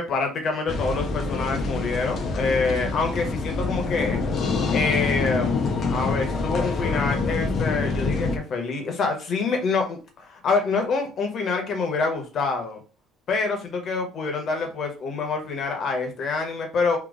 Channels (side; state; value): right; quieter; 3.7 dB